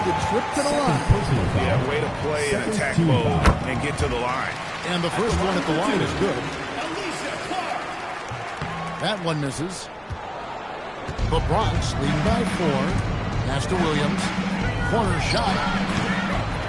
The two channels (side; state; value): both; identical; correlation 1.00